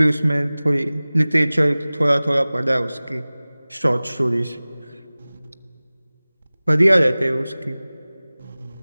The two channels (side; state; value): both; inverted; correlation -0.99